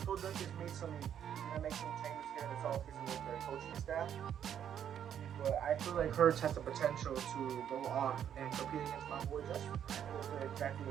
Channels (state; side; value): quieter; left; 9.3 dB